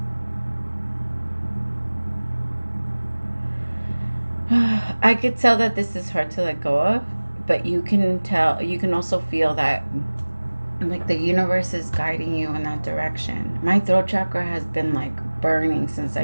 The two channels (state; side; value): inverted; both; correlation -1.00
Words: I could tell that this is hard to let go of, but you can also feel that like the universe is guiding you in that direction. My throat chakra has been like burning since